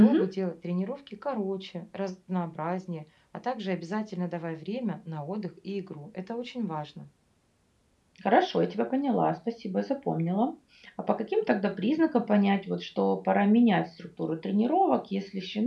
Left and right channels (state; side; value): identical; both; correlation 1.00